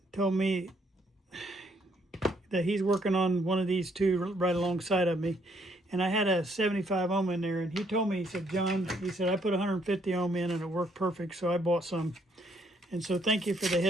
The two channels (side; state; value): both; normal; correlation 0.69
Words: told me that he's working on one of these two right alongside of me. And I had a 75 ohm in there, and he told me, he said, John, he said, I put 150 ohm in and it worked perfect, so I bought some. And so thank you for the